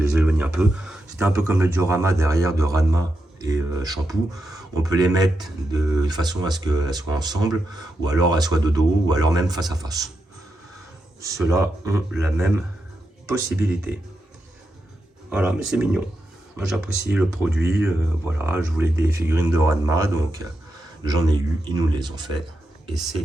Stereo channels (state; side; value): normal; both; correlation 0.86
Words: éloigne un peu. C'était un peu comme le diorama derrière de Ranma et Shampoo. On peut les mettre de façon à ce qu'elles soient ensemble, ou alors elles soient de dos, ou alors même face à face. Ceux-là ont la même possibilité. Voilà, mais c'est mignon. Moi j'apprécie le produit. Voilà, je voulais des figurines de Ranma, donc j'en ai eu, ils nous les ont fait. Et